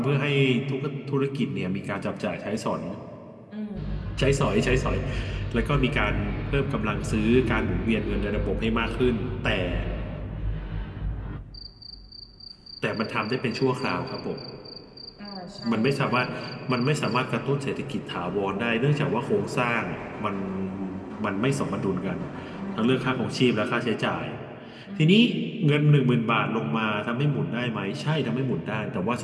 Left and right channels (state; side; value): identical; both; correlation 1.00